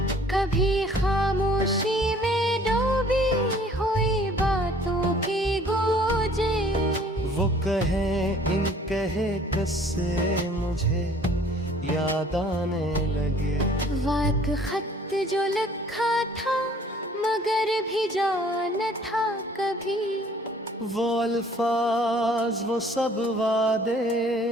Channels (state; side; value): normal; both; correlation 0.55